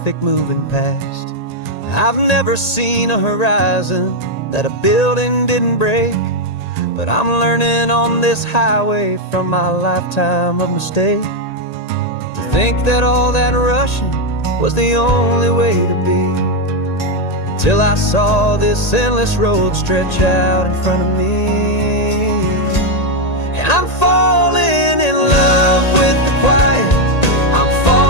moving past. I've never seen a horizon that a building didn't break, but I'm learning on this highway from my lifetime of mistake to think that all that rushing was the only way to be. Till I saw this endless road stretch out in front of me. And I'm falling in love with the quiet, I'm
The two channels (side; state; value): right; late; 1.8 ms